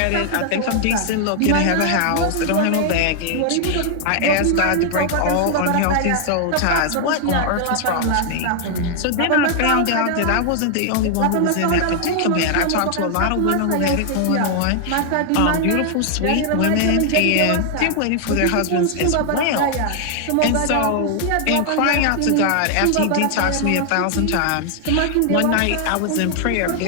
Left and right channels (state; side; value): different; both; correlation 0.00